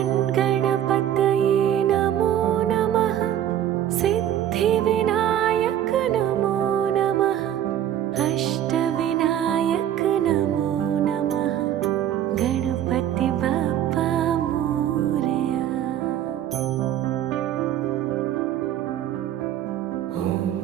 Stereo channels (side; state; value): left; quieter; 11.0 dB